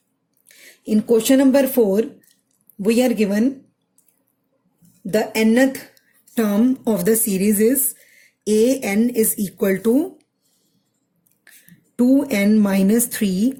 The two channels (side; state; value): both; identical; correlation 1.00